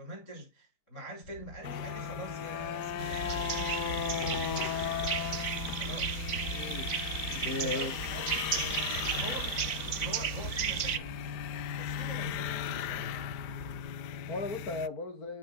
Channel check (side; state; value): right; late; 4.0 ms